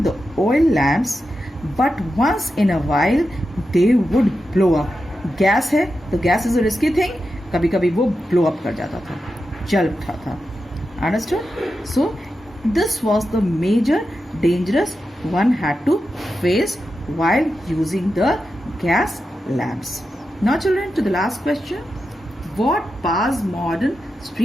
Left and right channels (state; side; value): normal; both; correlation 0.89